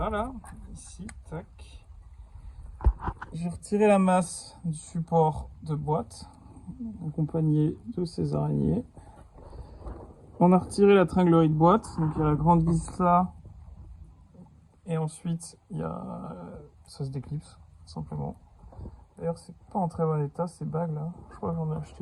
ici, tac. J'ai retiré la masse du support de boîte, accompagné de ces araignées. On a retiré la tringlerie de boîte, donc il y a la grande vis là, et ensuite il y a ça se déclipse simplement. D'ailleurs c'est pas en très bon état ces bagues là, je crois que j'en ai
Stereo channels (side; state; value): both; identical; correlation 1.00